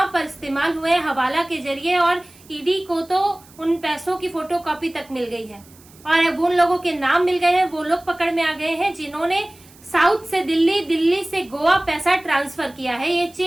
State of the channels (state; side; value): noise; right; hiss, 26 dB below the sound